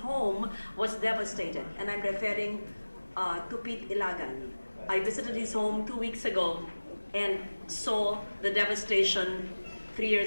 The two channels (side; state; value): both; inverted; correlation -1.00